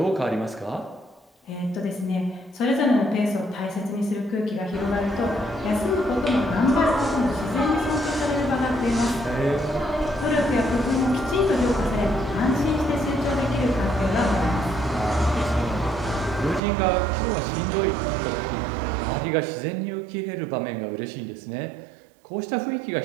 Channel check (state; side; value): drops out; left; at 16.6 s